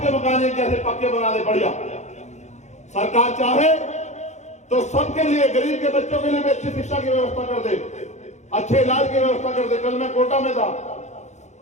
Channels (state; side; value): late; right; 0.33 ms